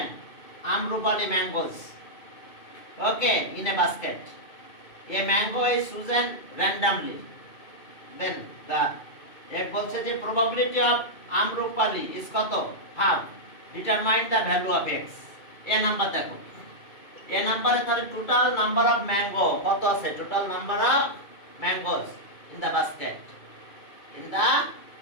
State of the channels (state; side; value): late; right; 2.6 ms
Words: amrupali mangoes, okay, in a basket. A mango is chosen randomly. Then the it বলছে যে probability of amrupali is কত, half. Determine the value of x. a number দেখো, a নাম্বারে তাহলে total number of mango কত আছে, total number of mangoes in the